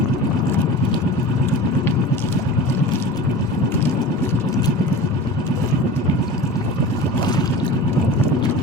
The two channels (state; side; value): normal; both; correlation 0.35